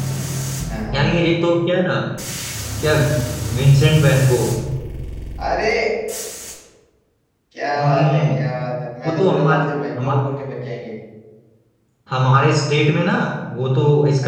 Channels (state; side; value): identical; both; correlation 1.00